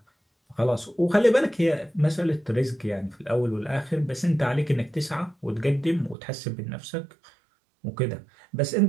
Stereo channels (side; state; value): left; drops out; at 6.2 s